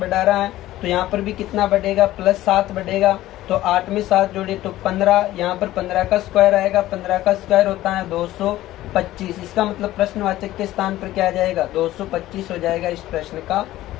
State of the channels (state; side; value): quieter; right; 15.2 dB